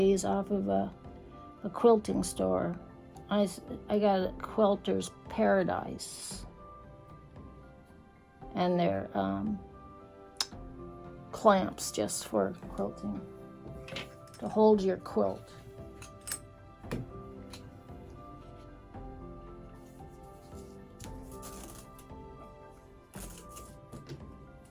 off of a quilting store. I got a Quilter's Paradise, and they're clamps just for quilting to hold your quilt.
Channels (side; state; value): both; identical; correlation 1.00